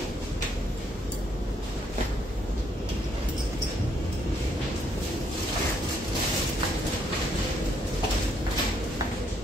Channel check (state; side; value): normal; both; correlation 0.71